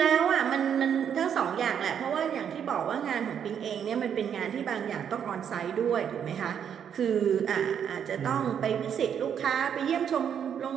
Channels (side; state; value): left; quieter; 8.3 dB